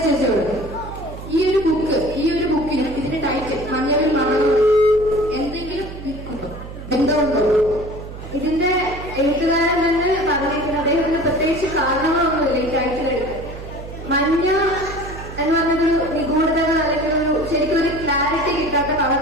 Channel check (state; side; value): noise; right; hum, 12 dB below the sound